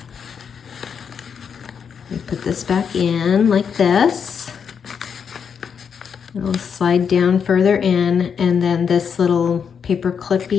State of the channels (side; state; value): right; quieter; 6.9 dB